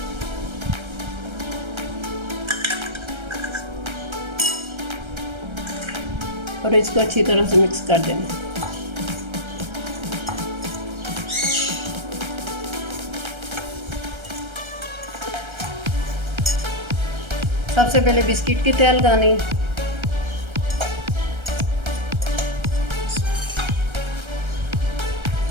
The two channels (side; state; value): left; late; 1.3 ms